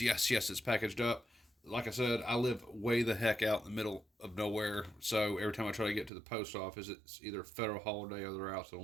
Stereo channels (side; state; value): left; drops out; at 6.1 s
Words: packaged up. Like I said, I live way the heck out in the middle of nowhere, so every time I try to get to the post office, it's either a federal holiday or they're out to